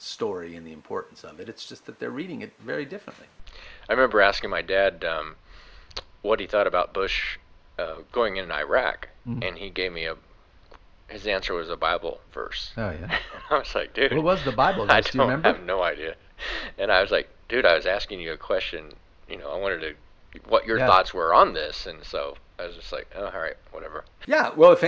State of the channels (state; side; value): identical; both; correlation 1.00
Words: and the importance of it. It's just that they're reading it very differently. I remember asking my dad what he thought about Bush going in Iraq, and he gave me his answer was a Bible verse. Oh, yeah. And I was like, dude. What was the Bible verse? Do you remember? I have no idea. And I was like, dude, I was asking you a question. I wanted what your thoughts were on this. And so I was just like, oh, all right, whatever. Yeah, well, if